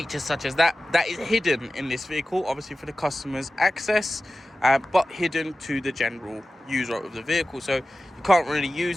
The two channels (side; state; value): both; normal; correlation 0.95